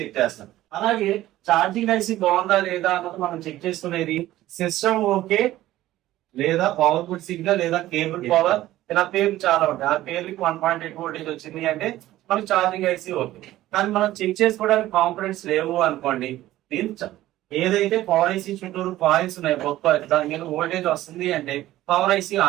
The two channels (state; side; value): quieter; left; 15.0 dB